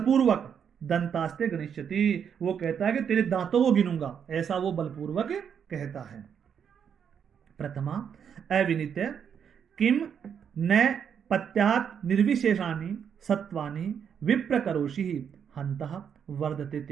दंतास्ते गणिष्यति, वो कहता है कि तेरे दांतों को गिनूंगा, ऐसा वो बलपूर्वक कहता है। प्रथमा अविनित किम न पत्यात निर्विशेषानि सत्वानि विप्रकरोषि हन्तः वर्धते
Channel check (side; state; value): left; quieter; 7.7 dB